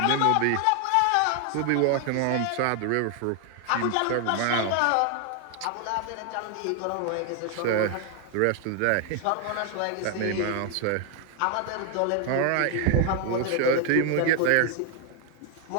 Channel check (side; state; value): both; different; correlation 0.01